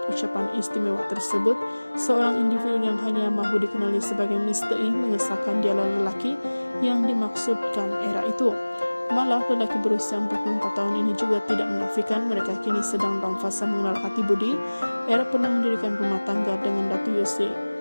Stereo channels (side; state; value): both; inverted; correlation -1.00